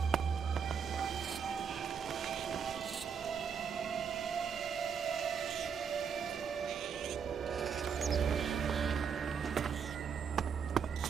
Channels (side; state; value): left; quieter; 6.9 dB